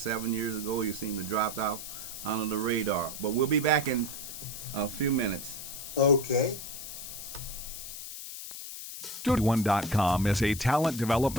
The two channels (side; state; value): left; noise; hiss, 9 dB below the sound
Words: years ago. You seem to drop out under the radar. But we'll be back in a few minutes. Okay. Studio81.com is a talent